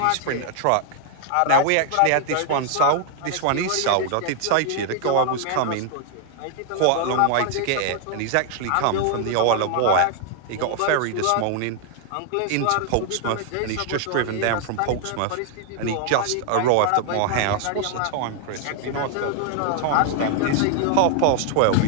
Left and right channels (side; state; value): both; different; correlation 0.00